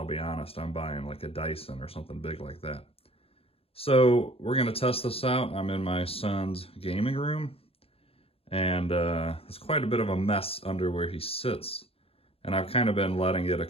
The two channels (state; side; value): late; right; 0.28 ms